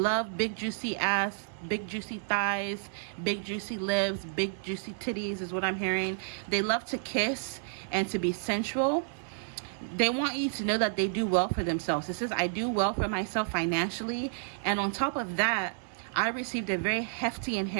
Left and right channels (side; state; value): left; silent; 57 dB below the other